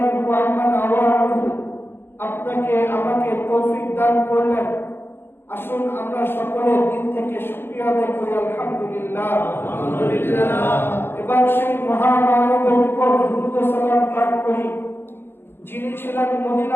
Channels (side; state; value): right; late; 0.11 ms